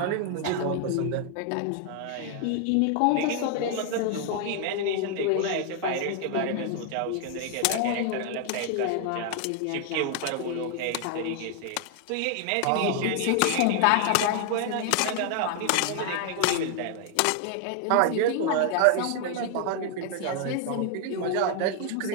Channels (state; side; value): different; both; correlation 0.00